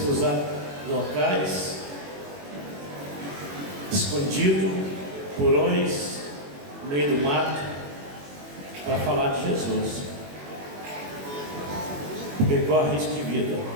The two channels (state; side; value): late; left; 21 ms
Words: usar locais escondidos, porões, no meio do mato, para falar de Jesus, porque corre risco de vida.